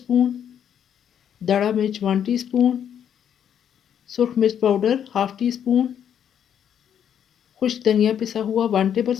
दड़ा मिर्च 1 टीस्पून, सुर्ख मिर्च पाउडर हाफ टी स्पून, खुश्क धनिया पिसा हुआ 1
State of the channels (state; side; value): quieter; right; 9.0 dB